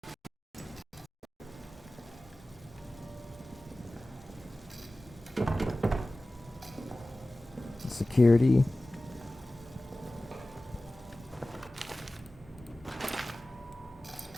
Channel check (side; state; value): both; normal; correlation 0.97